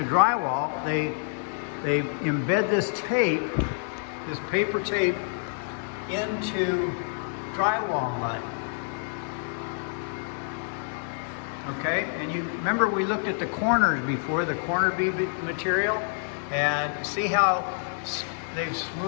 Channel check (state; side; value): silent; right; 60 dB below the other